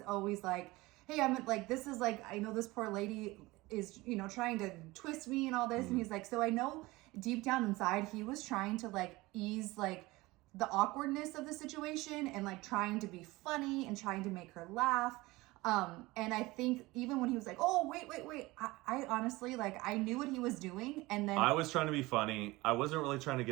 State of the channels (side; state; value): left; quieter; 20.8 dB